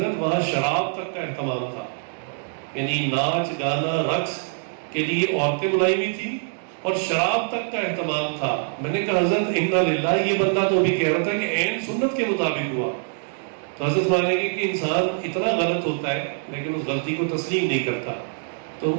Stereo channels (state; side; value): silent; left; 63 dB below the other